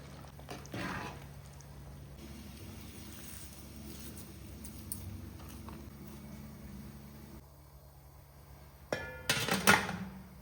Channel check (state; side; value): identical; both; correlation 1.00